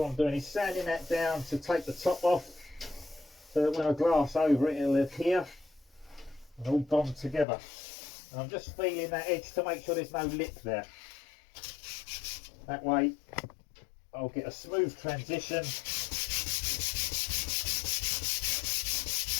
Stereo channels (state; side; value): drops out; right; at 7.5 s